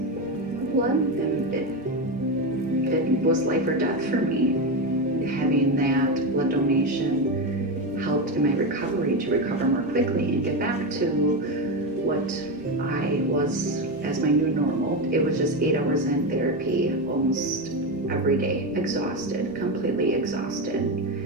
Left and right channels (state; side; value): normal; both; correlation 0.14